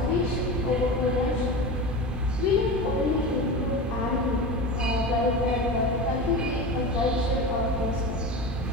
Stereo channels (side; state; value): both; normal; correlation 0.27